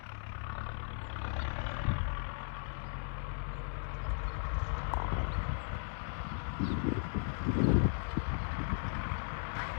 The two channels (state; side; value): silent; right; digital silence